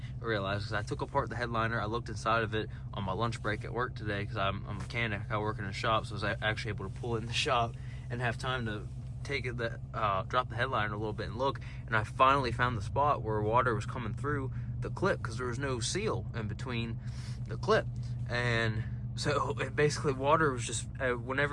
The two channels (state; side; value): identical; both; correlation 1.00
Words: realized, because I took apart the headliner. I looked inside of it on my lunch break at work today, because I'm a mechanic. I work in a shop, so I was actually able to pull it in the shop and have time to take it, drop the headliner a little bit and look. And I finally found the spot where water was coming through the clip, because there was no seal in between the clip. And so basically water was just,